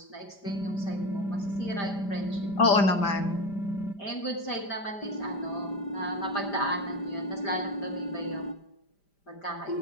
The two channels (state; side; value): late; right; 5.0 ms